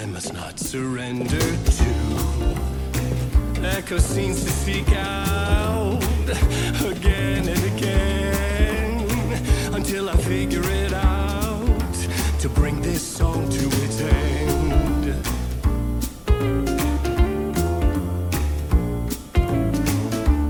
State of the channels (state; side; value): identical; both; correlation 1.00